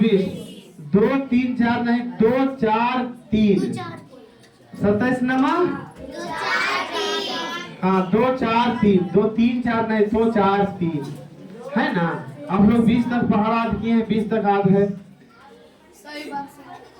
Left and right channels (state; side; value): identical; both; correlation 1.00